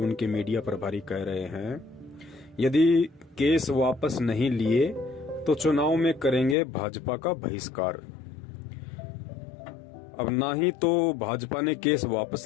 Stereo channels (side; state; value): right; drops out; at 6.6 s